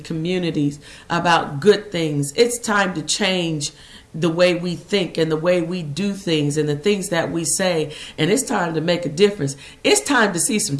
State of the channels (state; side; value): identical; both; correlation 1.00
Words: communities about good things. It's time to change the way we think and the way we do things and the things that we say. And it's time to make a difference. It's time to see some